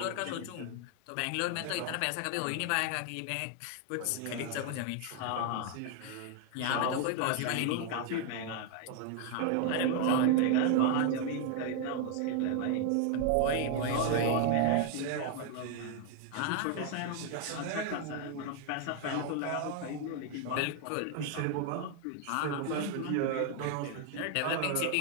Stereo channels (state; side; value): different; both; correlation 0.00